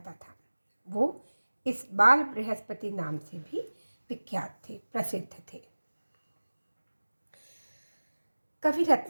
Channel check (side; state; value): both; inverted; correlation -1.00